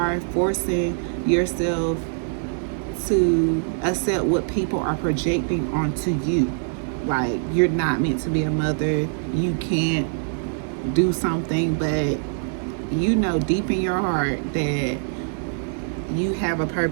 forcing yourself to accept what people are projecting onto you. Like, you're not meant to be a mother. You can't do something, but deep in your heart that you have a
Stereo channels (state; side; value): silent; left; 56 dB below the other